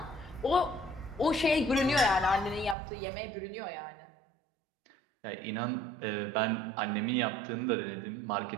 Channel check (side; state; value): left; drops out; at 2.8 s